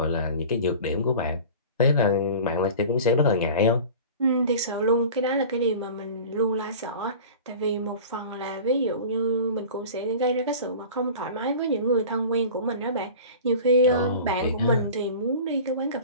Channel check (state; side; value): inverted; both; correlation -0.38